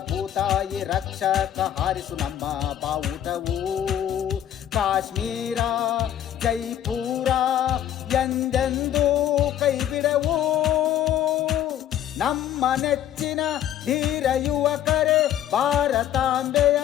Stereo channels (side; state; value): right; quieter; 11.0 dB